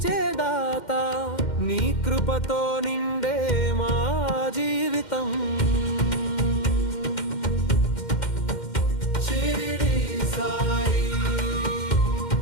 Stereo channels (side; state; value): right; late; 2.1 ms